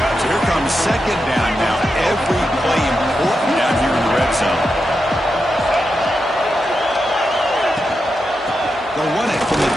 So here comes second down now. Every play important down here in the red zone. They'll run it from the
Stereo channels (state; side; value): noise; right; hum, 25 dB below the sound